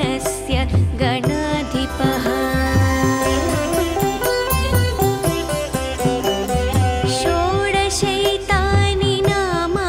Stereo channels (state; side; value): identical; both; correlation 1.00